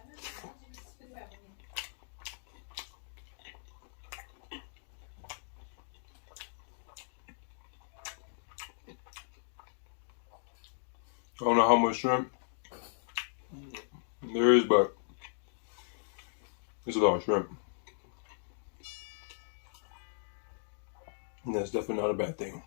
I don't know how much shrimp there is, but it's a lot of shrimp. And that's definitely not a bad thing.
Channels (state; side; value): silent; right; digital silence